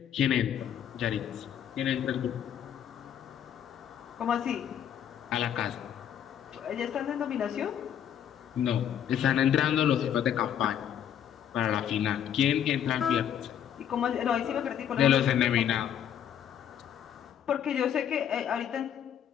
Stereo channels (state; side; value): quieter; right; 9.5 dB